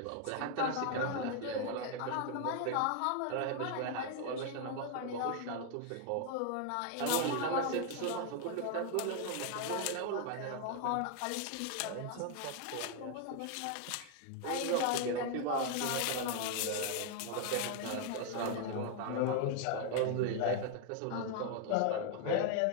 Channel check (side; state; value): both; different; correlation 0.00